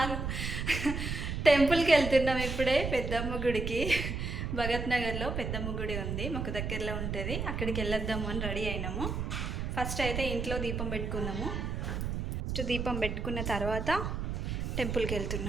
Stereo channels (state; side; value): noise; right; rumble, 3 dB below the sound